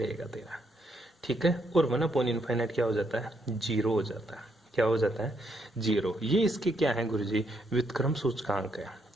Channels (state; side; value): normal; both; correlation 0.75